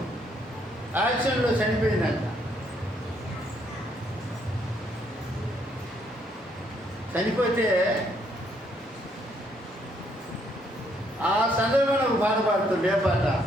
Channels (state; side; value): normal; both; correlation 0.70